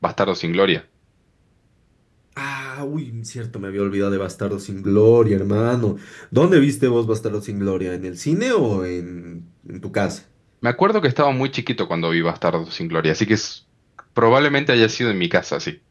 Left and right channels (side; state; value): both; identical; correlation 1.00